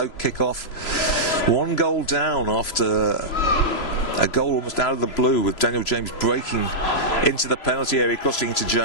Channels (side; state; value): right; late; 3.0 ms